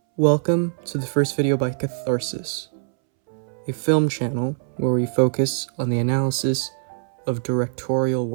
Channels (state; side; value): silent; left; 63 dB below the other